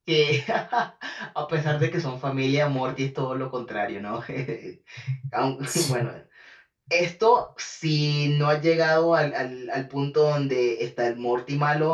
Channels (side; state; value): both; identical; correlation 1.00